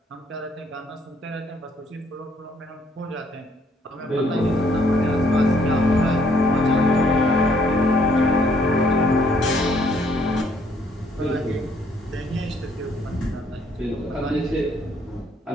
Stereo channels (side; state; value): both; normal; correlation 0.67